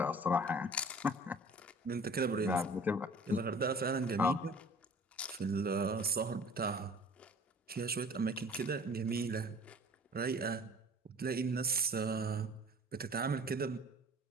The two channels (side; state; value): both; normal; correlation 0.46